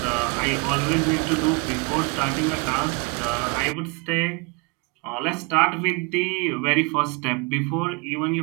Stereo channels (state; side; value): quieter; left; 27.9 dB